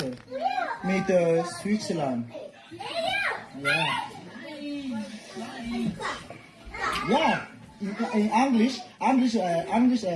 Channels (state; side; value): identical; both; correlation 1.00